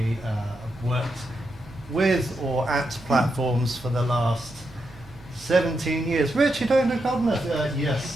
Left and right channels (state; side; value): normal; both; correlation 0.84